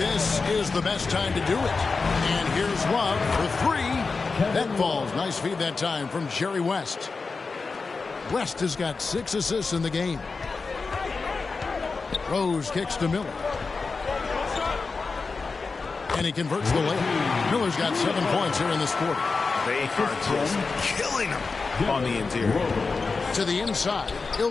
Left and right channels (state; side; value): quieter; right; 4.3 dB